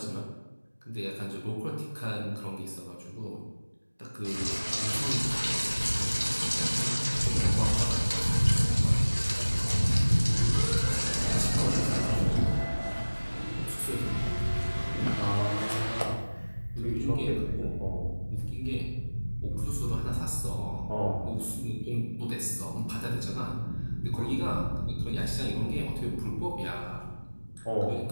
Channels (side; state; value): both; inverted; correlation -1.00